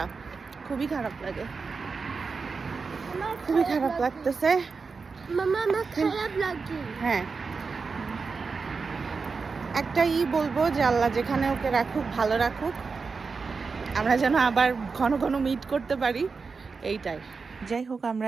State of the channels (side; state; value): left; quieter; 4.8 dB